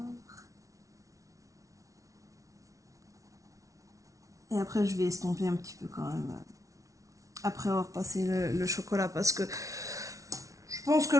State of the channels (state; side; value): late; left; 0.16 ms